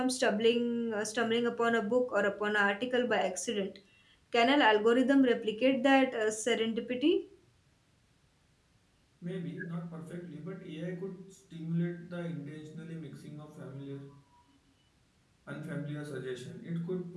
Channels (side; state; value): both; identical; correlation 1.00